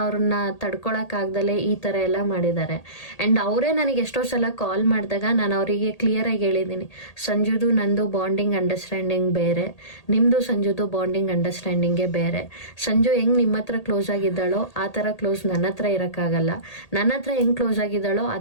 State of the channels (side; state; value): right; late; 1.8 ms